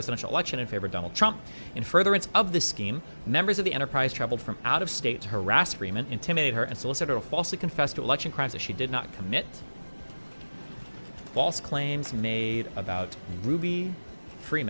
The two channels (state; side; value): inverted; both; correlation -1.00